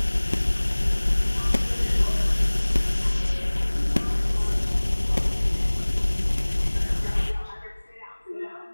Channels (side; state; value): both; inverted; correlation -1.00